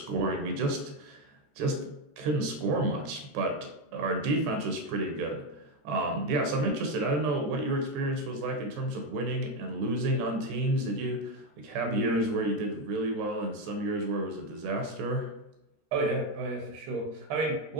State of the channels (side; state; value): left; late; 13 ms